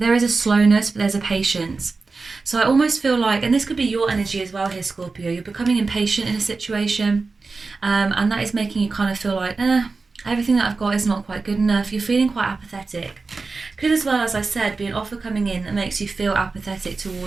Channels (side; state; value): left; quieter; 4.1 dB